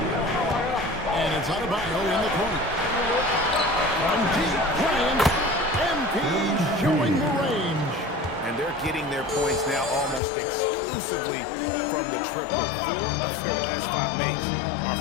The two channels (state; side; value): drops out; right; at 10.2 s